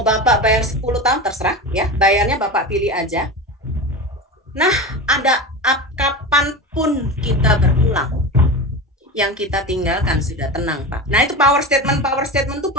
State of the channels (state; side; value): normal; both; correlation 0.25